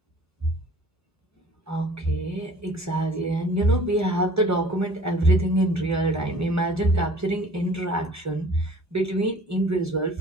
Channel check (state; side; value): normal; both; correlation 0.49